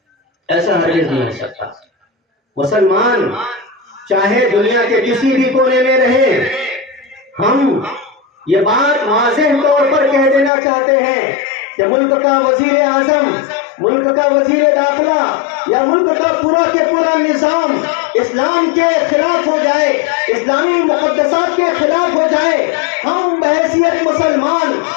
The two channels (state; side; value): drops out; right; at 10.5 s